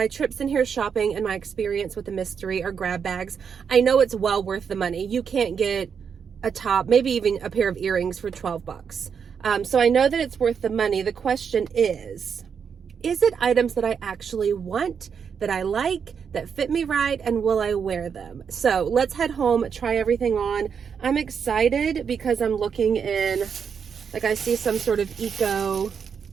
trips in here shopping and my experience with the mystery or grab bags, I know it's well worth the money. You can't get a top, maybe even a pair of earrings for 12 bucks. So I know that it's worth the money. The question is it items that I actually want, that I like, that fit me right, and will I wear them? So let's head home, try everything on. I'm excited because I'm looking in, like I see some sort of eco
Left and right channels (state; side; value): quieter; left; 6.8 dB